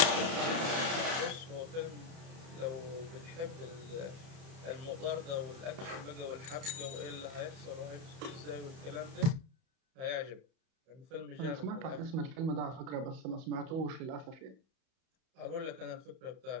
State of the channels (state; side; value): late; left; 31 ms